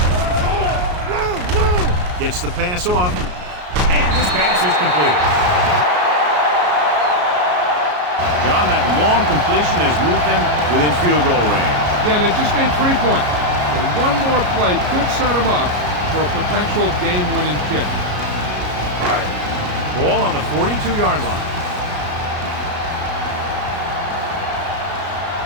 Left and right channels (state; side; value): late; left; 33 ms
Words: Gets the pass off, and this pass is completed. John, that long completion has moved them within field goal range. Yeah, they just need 3 points. So one more play could set them up for a potential game-winning kick. Ball on the 42-yard line.